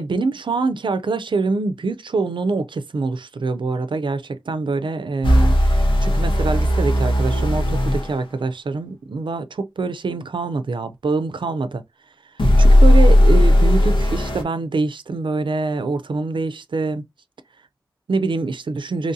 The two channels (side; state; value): both; normal; correlation 0.91